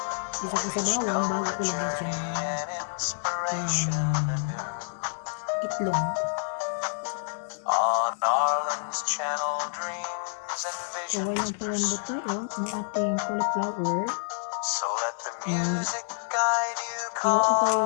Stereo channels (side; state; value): right; silent; digital silence